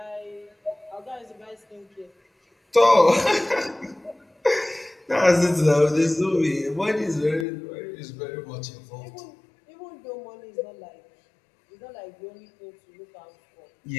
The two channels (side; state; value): right; drops out; at 7.5 s